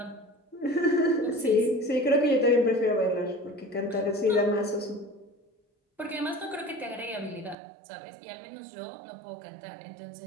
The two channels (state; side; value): drops out; left; at 7.6 s